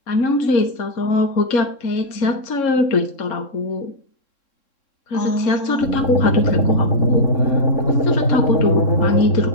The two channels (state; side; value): late; right; 3.7 ms